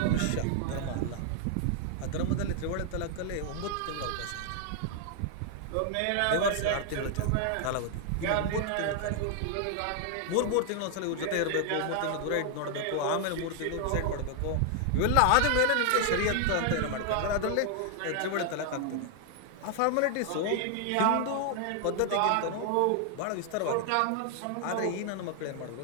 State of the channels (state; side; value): different; both; correlation 0.00